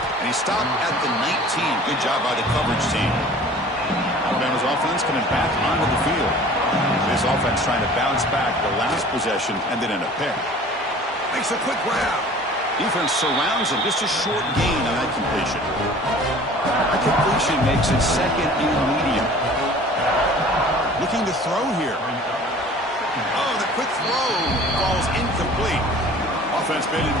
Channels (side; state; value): both; normal; correlation 0.46